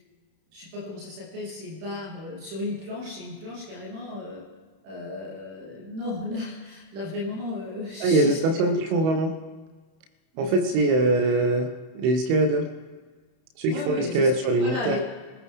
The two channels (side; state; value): left; late; 31 ms